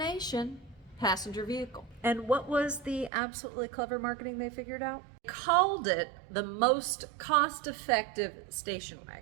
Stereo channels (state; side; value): drops out; left; at 3.1 s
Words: passenger vehicle. And what was the absolutely clever marketing they figured out? Called it the most cost-effective station